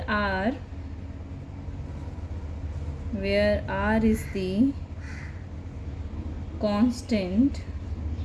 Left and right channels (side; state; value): both; identical; correlation 1.00